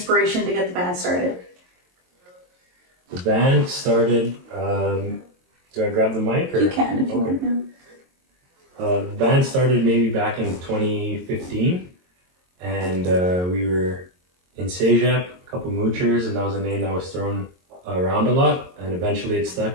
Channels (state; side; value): late; left; 22 ms